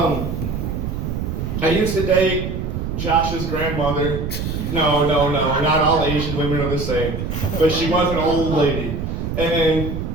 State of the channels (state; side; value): noise; right; rumble, 3 dB below the sound